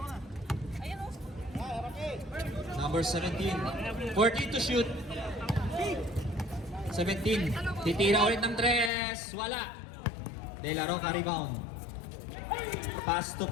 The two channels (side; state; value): right; drops out; at 8.9 s